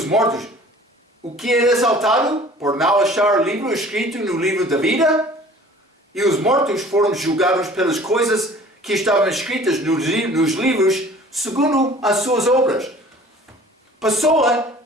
mortos, o que é exaltado por não achar livro escrito no livro da vida? E os mortos foram julgados pelas coisas que estavam escritas nos livros segundo as suas obras. Pessoa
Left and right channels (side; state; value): both; normal; correlation 0.48